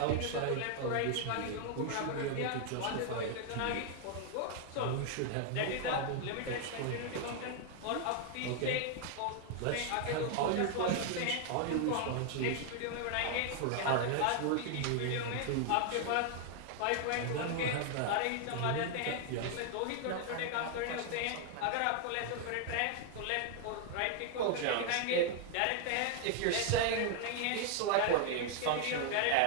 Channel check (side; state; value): both; different; correlation 0.00